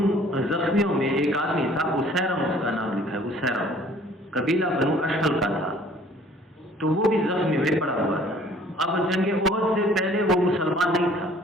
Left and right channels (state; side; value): normal; both; correlation 0.54